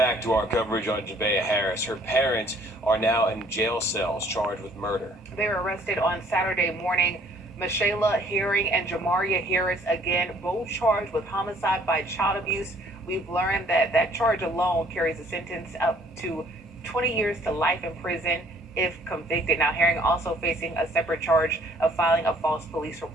to our coverage on Javeya Harris. Her parents are now in jail cells charged with murder. They were arrested on Saturday morning. Michaela Herring and Jamaria Harris, again, both charged with homicide by child abuse. We've learned that that charge alone carries a sentence up to 20 years to life in prison if convicted. Now, Herring also facing a separate charge of filing a false police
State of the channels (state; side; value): normal; both; correlation 0.59